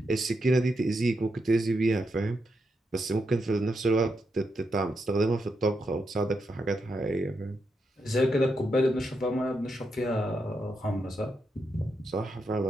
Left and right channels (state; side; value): normal; both; correlation 0.83